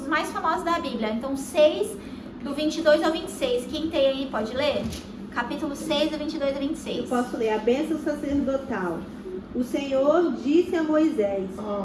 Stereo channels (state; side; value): identical; both; correlation 1.00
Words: mais famosos da Bíblia. Então 6, do 22 ao 26. Quem tem aí pode ler? Capítulo 6, do 22 ao 26. Eu posso ler a bênção sacerdotal. O Senhor disse a Moisés: